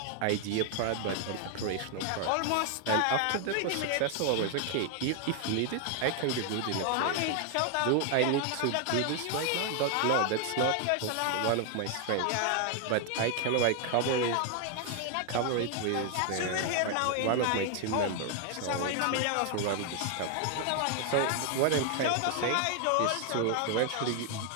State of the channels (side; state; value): both; different; correlation 0.00